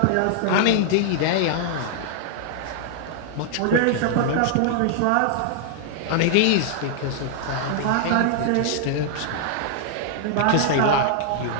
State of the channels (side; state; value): both; different; correlation -0.01